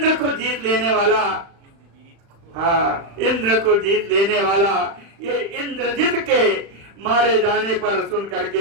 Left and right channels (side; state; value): left; late; 35 ms